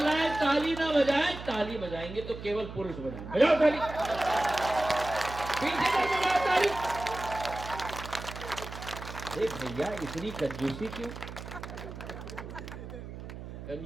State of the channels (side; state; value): right; noise; hum, 11 dB below the sound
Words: ताली ना बजाएं, ताली बजाएंगे तो केवल पुरुष बजाएंगे। बजाओ ताली, पीछे से बजाओ ताली। अरे भैया, इतनी कंजूसी क्यों?